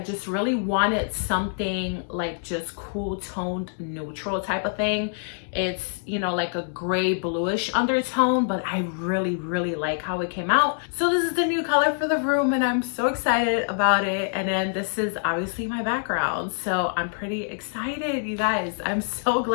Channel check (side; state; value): right; silent; 62 dB below the other